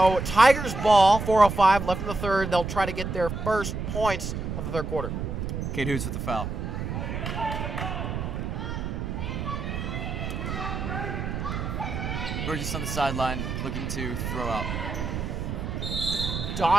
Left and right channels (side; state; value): right; noise; rumble, 4 dB below the sound